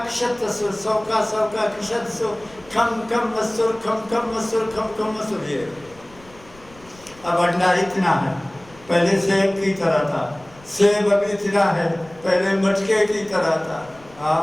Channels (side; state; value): left; noise; rumble, 25 dB below the sound